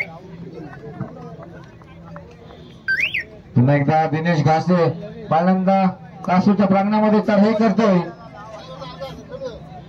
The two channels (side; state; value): both; identical; correlation 1.00